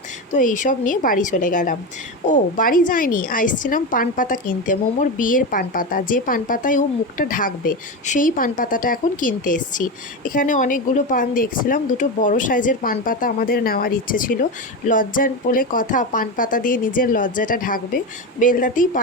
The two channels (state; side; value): normal; both; correlation 0.17